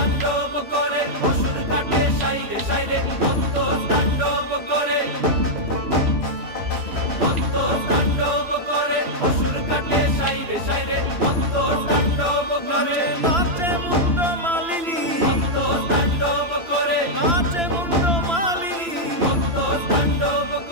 করে অসুর কাটে সাইরে সাইরে, মত্ত তাণ্ডব করে, মত্ত তাণ্ডব করে অসুর কাটে সাইরে সাইরে, মত্ত তাণ্ডব করে। নাচে মুন্ড মালিনী, মত্ত তাণ্ডব করে, নাচে মুন্ড মালিনী। মত্ত তাণ্ডব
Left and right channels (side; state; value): left; late; 2.9 ms